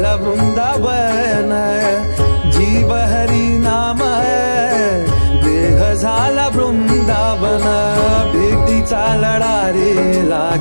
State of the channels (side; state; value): both; inverted; correlation -1.00